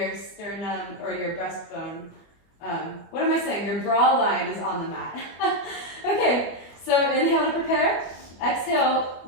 sternum or your breastbone. What am I saying? Your bra line is on the mat. Okay, so inhale to prepare. Exhale,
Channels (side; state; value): right; late; 25 ms